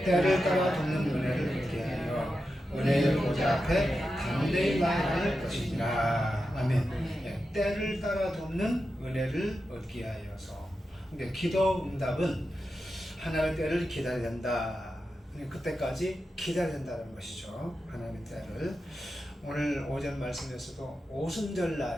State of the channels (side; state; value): both; normal; correlation 0.90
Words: 때를 따라 돕는 은혜를 얻게 하여 은혜의 보좌 앞에 담대히 나아갈 것이니라. 아멘. 예, 때를 따라 돕는 은혜를 얻게 하여서. 근데 기도 응답은 하나님의 때를 기다려야 된다. 그때까지 기다려야 된다는 것이죠. 하나님의 때를. 오늘 오전 말씀에서도